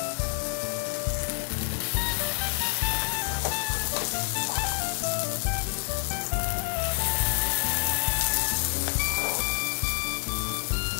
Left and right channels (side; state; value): right; silent; digital silence